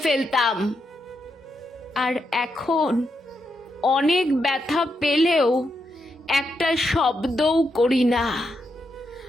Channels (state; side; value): normal; both; correlation 0.83